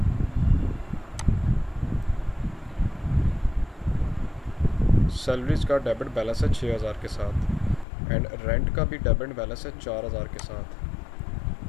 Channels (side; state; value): right; drops out; at 7.9 s